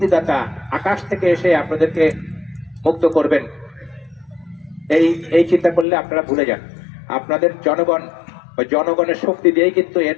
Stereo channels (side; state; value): right; drops out; at 5.9 s